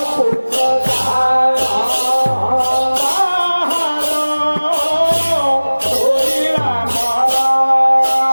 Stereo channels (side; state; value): both; inverted; correlation -1.00